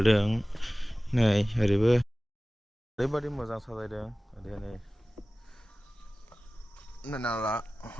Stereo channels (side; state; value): both; normal; correlation 0.97